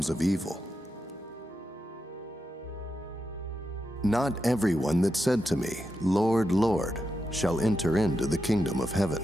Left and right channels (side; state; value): both; normal; correlation 0.87